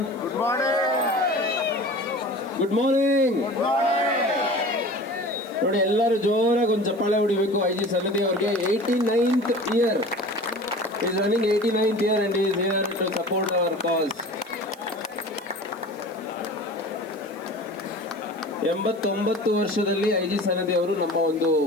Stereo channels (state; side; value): noise; right; hiss, 27 dB below the sound